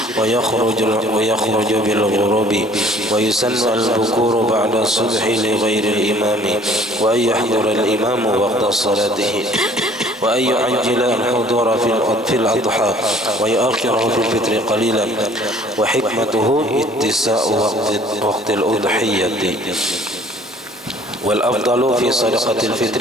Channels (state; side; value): normal; both; correlation 0.54